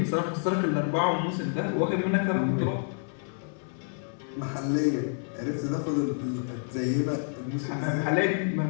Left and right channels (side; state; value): right; silent; digital silence